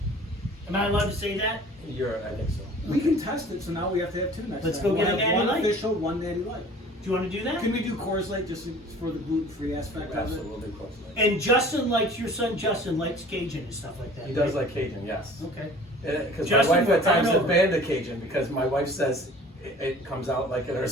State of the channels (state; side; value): normal; both; correlation 0.47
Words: Am I allowed to say that? I think so. We can test it, so now we have to have 2 next Let's time. go get We'll a have Natty one Light. official, one natty light. Do you want to do that? Can we do Coors Light just for the gluten-free aspect of Absolutely, it? we'll do close. And Justin likes, your son Justin likes Cajun and stuff like that. He does right? like Cajun, yes. Okay. Because my Justin, wife we're at times coming has over. banned the Cajun because my wife says it comes out like in our